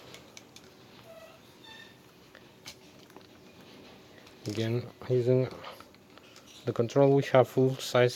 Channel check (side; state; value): both; identical; correlation 1.00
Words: Again, using the control, we have full side